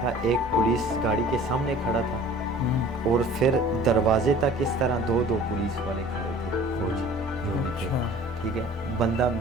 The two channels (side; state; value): both; normal; correlation 0.47